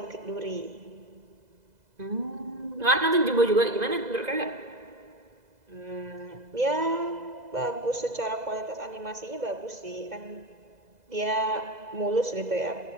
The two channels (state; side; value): late; left; 2.0 ms